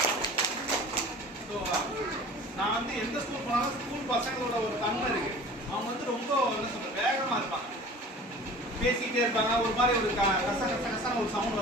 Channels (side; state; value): both; normal; correlation 0.43